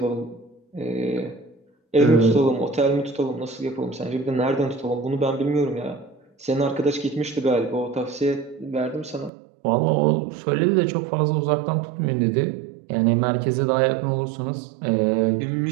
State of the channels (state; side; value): drops out; left; at 9.3 s